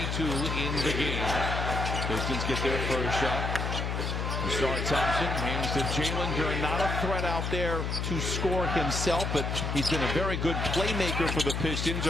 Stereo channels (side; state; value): left; noise; hum, 1 dB below the sound